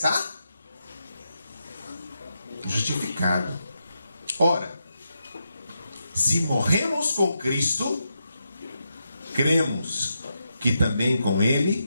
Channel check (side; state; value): both; inverted; correlation -0.84